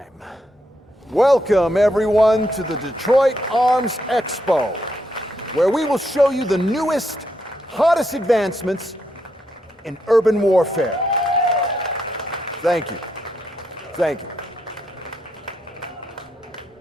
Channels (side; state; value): both; normal; correlation 0.79